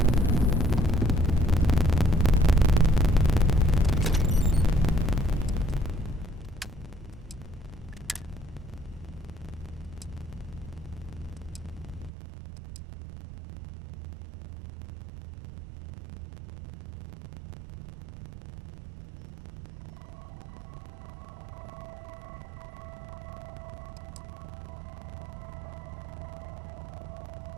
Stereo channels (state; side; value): drops out; left; at 12.1 s